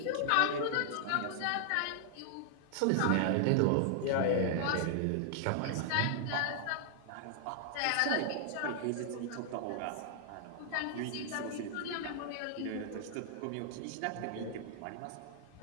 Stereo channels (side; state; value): both; different; correlation 0.00